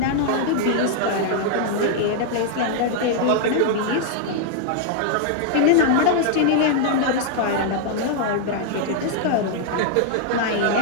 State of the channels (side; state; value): both; different; correlation 0.00